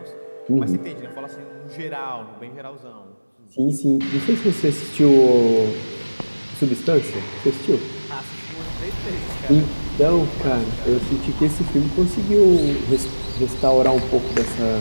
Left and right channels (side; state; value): both; inverted; correlation -1.00